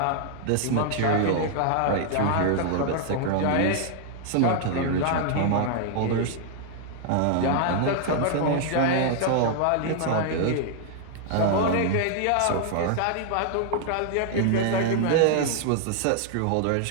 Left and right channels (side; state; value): both; different; correlation 0.00